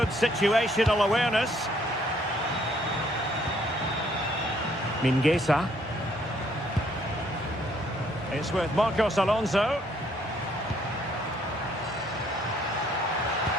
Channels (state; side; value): normal; both; correlation 0.66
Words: situational awareness. Mingueza. It's with Marcos Alonso.